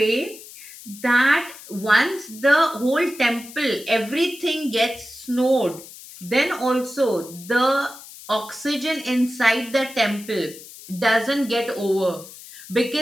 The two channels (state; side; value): noise; left; hiss, 17 dB below the sound